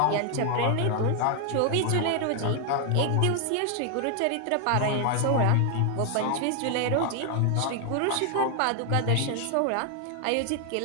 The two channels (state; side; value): different; both; correlation 0.00